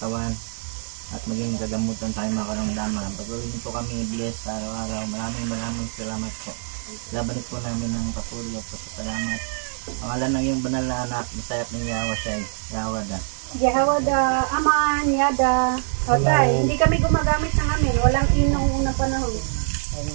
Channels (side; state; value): left; silent; 58 dB below the other